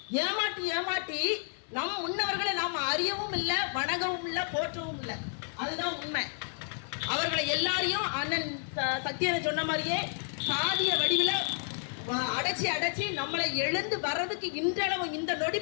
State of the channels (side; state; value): right; silent; 57 dB below the other